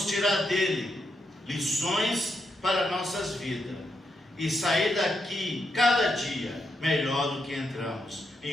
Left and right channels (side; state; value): both; normal; correlation 0.82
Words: tirar dele lições para nossas vidas e sair daqui cada dia melhor do que entramos.